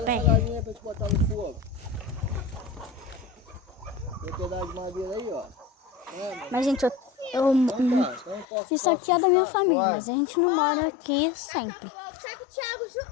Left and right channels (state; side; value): drops out; right; at 8.5 s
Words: pé. essa galinha pra te botar no fogo. Tem um pedaço de madeira aí, ó. Mas, gente, Então, isso aqui é da minha família, mas a gente não mora aqui sempre. Tá com o Thiago junto.